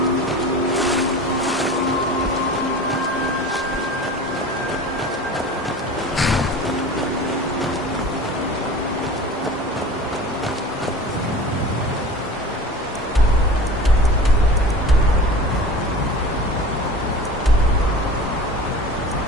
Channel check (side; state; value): both; normal; correlation 0.37